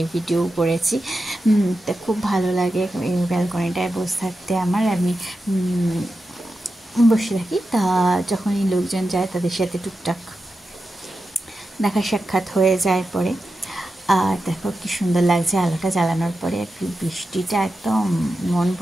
ভিডিও করেছি। তা খুব ভালো লাগে এই ব্যালকনিটায় বসে থাকতে আমার। আমি বসে থাকি, তা যখন এই লোকজন যায় তাদের সাথে টুকটাক দেখা সাক্ষাৎ হয়ে যায় পরে। আর দেখো কি সুন্দর লাগছে আলোটা জ্বালানোর পরে, আর বৃষ্টিটা একদম মন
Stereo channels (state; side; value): normal; both; correlation 0.91